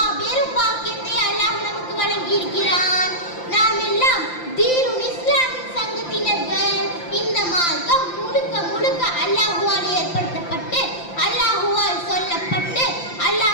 பாக்கியத்தை அல்லாஹ் நமக்கு வழங்கி இருக்கிறான். நாம் எல்லாம் தீனுல் இஸ்லாமின் சங்கத்தினர்கள். இந்த மார்க்கம் முழுக்க முழுக்க அல்லாஹ்வால் ஏற்படுத்தப்பட்டு அல்லாஹ்வால் சொல்லப்பட்டு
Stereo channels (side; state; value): right; late; 5.8 ms